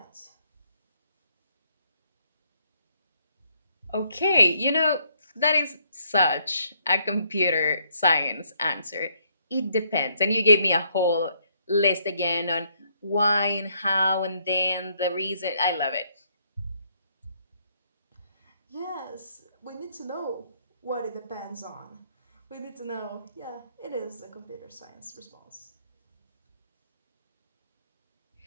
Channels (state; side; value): inverted; both; correlation -0.70